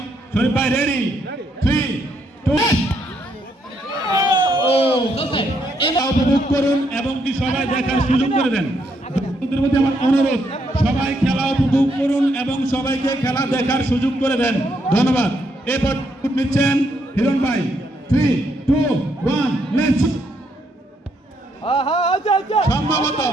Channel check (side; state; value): both; normal; correlation 0.75